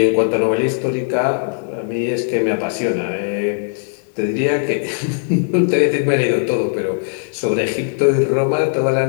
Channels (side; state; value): right; silent; digital silence